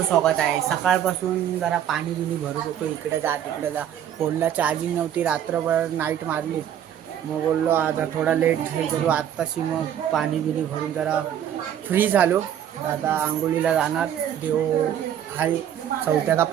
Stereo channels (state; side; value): quieter; left; 10.0 dB